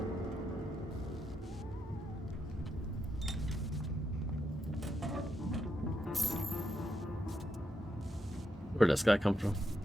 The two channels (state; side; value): normal; both; correlation 0.82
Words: Where'd this guy come from?